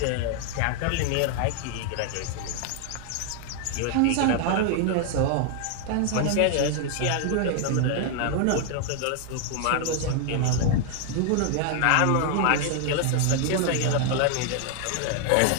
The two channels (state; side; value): different; both; correlation 0.00